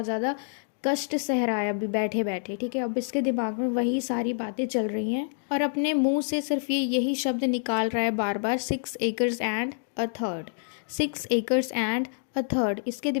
ज़्यादा कष्ट सह रहा है अभी बैठे बैठे, ठीक है। अब इसके दिमाग में वही सारी बातें चल रही हैं और अपने मुंह से सिर्फ ये यही शब्द निकाल रहा है बार बार, 6 acres and a third, 6 acres and a third. इसके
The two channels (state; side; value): silent; right; digital silence